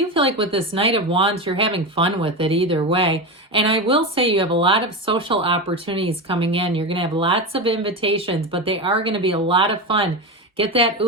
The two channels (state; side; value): normal; both; correlation 0.18